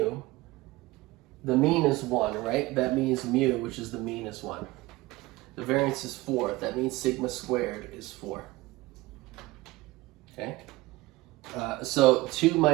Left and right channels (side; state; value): left; quieter; 20.0 dB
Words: the mean is 1, right? That means mu, which is the mean, is 1. The variance is 4. That means sigma squared is 4. Okay? So 2